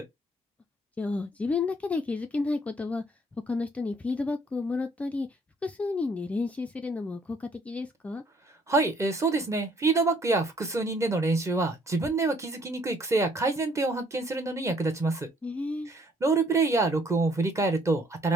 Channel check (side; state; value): both; normal; correlation 0.63